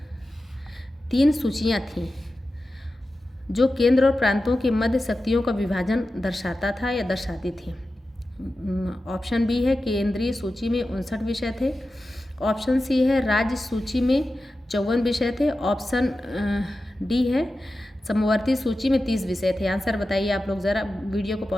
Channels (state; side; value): normal; both; correlation 0.93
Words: 3 सूचियाँ थीं जो केंद्र और प्रांतों के मध्य शक्तियों का विभाजन दर्शाता था या दर्शाती थी। ऑप्शन बी है केंद्रीय सूची में 59 विषय थे। ऑप्शन सी है राज्य सूची में 54 विषय थे। ऑप्शन डी है समवर्ती सूची में 30 विषय थे। आंसर बताइए आप लोग, ज़रा वीडियो को